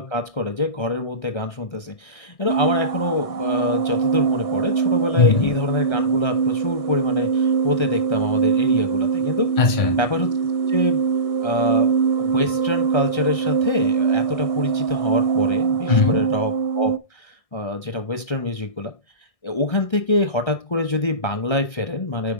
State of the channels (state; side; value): late; right; 1.6 ms